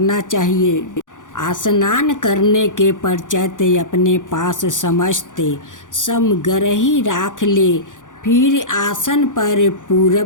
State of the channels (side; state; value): right; late; 0.87 ms